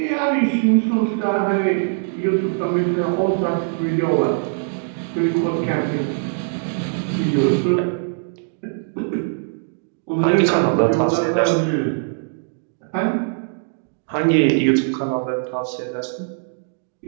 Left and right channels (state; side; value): silent; left; digital silence